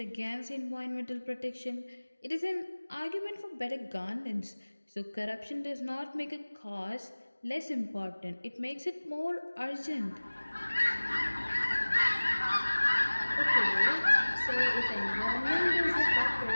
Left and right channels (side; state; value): both; inverted; correlation -1.00